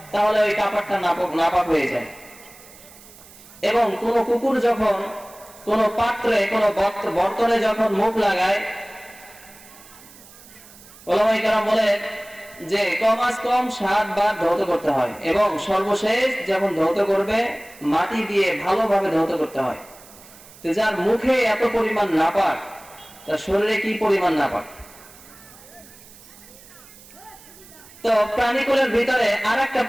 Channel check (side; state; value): right; noise; hiss, 21 dB below the sound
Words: তাহলে ওই কাপড়টা নাপাক হয়ে যায়। এবং কোন কুকুর যখন কোন পাত্রে, কোন বর্তনে যখন মুখ লাগায়, ওলামায়ে কেরাম বলেন যে কমাস কম 7 বার ধৌত করতে হয় এবং সর্বশেষ যখন ধৌত করবে মাটি দিয়ে ভালোভাবে ধৌত করতে হয়। তো যার মুখে এত পরিমাণ নাপাক, তার শরীরে কি পরিমাণ নাপাক। তো প্রাণীকুলের ভিতরে আরেকটা